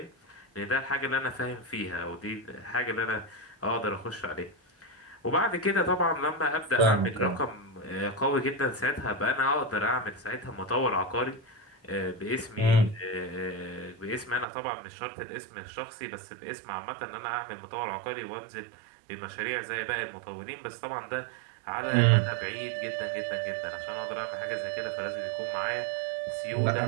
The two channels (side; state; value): left; drops out; at 14.5 s